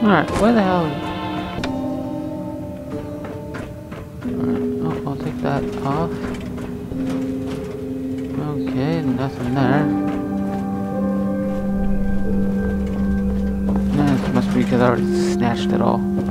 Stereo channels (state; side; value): identical; both; correlation 1.00